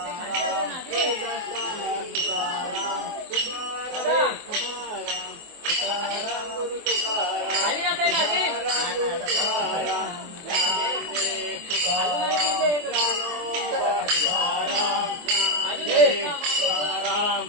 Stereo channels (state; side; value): late; left; 24 ms